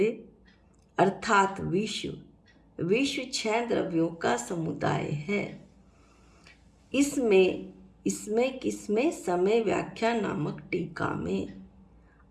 अर्थात विश्व 6 द्रव्यों का समुदाय है। इसमें किसमें समय व्याख्या नामक टीका में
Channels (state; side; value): identical; both; correlation 1.00